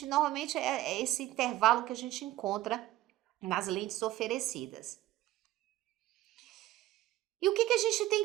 normalmente é esse intervalo que a gente encontra nas lentes oferecidas. E o que a gente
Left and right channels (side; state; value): left; quieter; 15.5 dB